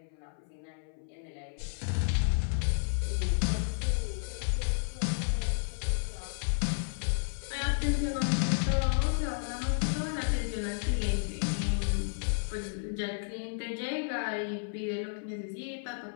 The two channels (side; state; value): right; silent; 56 dB below the other